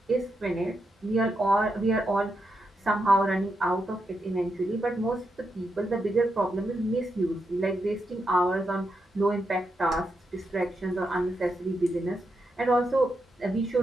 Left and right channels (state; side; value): normal; both; correlation 0.84